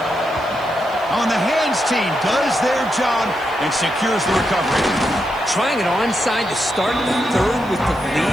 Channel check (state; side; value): noise; right; hiss, 26 dB below the sound